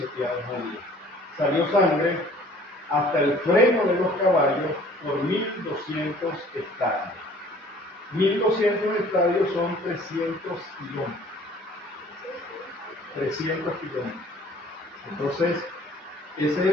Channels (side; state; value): both; normal; correlation 0.53